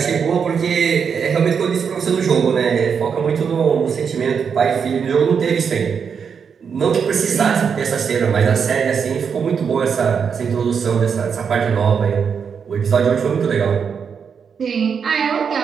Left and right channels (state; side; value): quieter; left; 6.6 dB